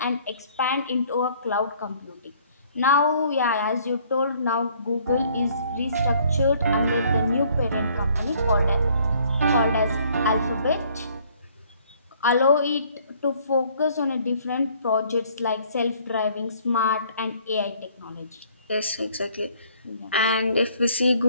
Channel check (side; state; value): both; inverted; correlation -0.60